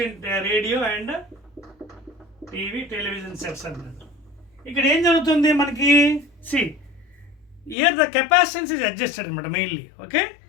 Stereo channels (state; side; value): drops out; right; at 7.8 s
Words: in radio and TV television sets అన్నాడు. ఇక్కడ ఏం జరుగుతుంది మనకి? See here the capacitance is adjusted అనమాట mainly. Okay,